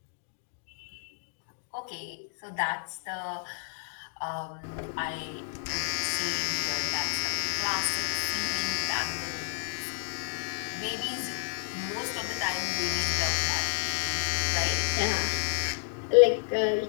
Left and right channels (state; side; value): silent; right; digital silence